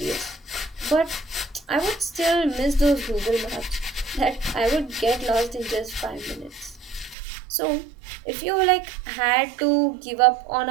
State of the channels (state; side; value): drops out; left; at 7.2 s